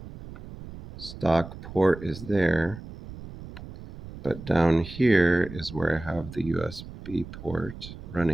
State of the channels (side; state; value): right; noise; rumble, 14 dB below the sound